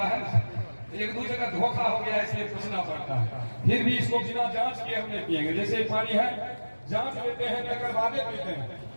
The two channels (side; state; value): both; inverted; correlation -1.00